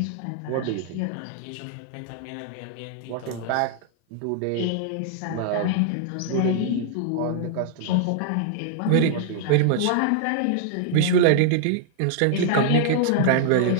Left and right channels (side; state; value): both; different; correlation -0.01